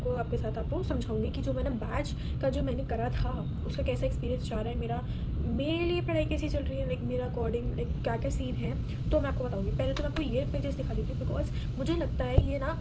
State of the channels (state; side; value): identical; both; correlation 1.00